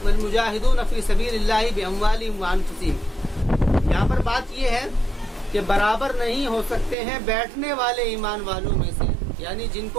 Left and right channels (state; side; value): drops out; left; at 7.0 s